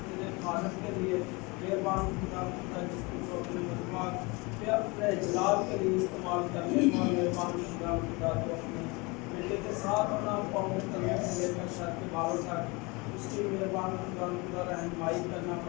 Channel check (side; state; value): right; quieter; 26.5 dB